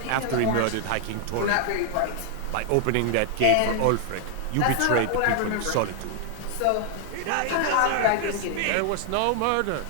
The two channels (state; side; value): different; both; correlation 0.00